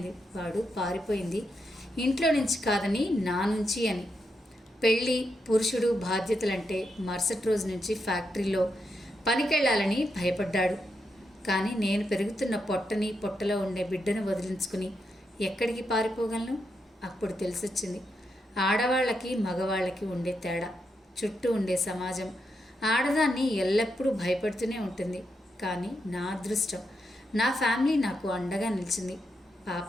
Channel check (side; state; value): both; normal; correlation 0.83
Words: వాడు పారిపోయింది ఇంట్లో నుంచి కాదని నా నుంచి అని. పెళ్ళి, పురుషుడు, బాధ్యతలంటే మరుసటి రోజు నుంచి ఫ్యాక్టరీలో పనికెళ్ళాలని భయపడ్డాడు. కానీ నేను పెరుగుతున్న పొట్టని, పొట్టలో ఉండే బిడ్డను వదిలించుకుని ఎక్కడికి పారిపోగలను? అప్పుడు తెలిసొచ్చింది ఆడవాళ్ళకి, మగవాళ్ళకి ఉండే తేడా. చుట్టూ ఉండే సమాజం ఆడదాన్ని ఎల్లప్పుడూ భయపడుతూనే ఉంటుంది. కానీ నా అదృష్టం, నా ఫ్యామిలీ నాకు అండగా నిలిచింది.